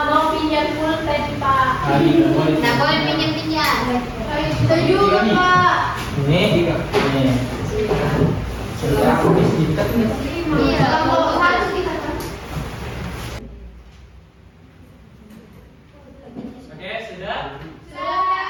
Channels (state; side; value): identical; both; correlation 1.00